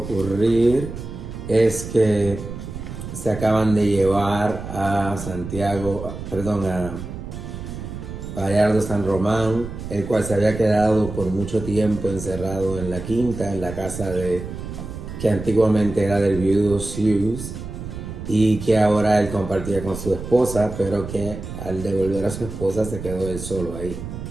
es que se acaban de llevar a Bayardo San Román, el cual se había quedado por mucho tiempo encerrado en la quinta, en la casa que antiguamente era del viudo Hughes y que ahora él compartía con su esposa, pero que al devolver a su esposa se quedó él solo ahí.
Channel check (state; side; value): noise; right; rumble, 9 dB below the sound